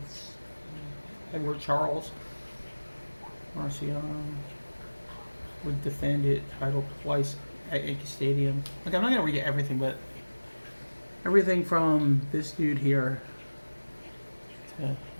Edward Charles. Marciano would defend it title twice at Yankee Stadium. Okay, I'm not gonna read everything, but everything from this dude here to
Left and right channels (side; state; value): both; inverted; correlation -1.00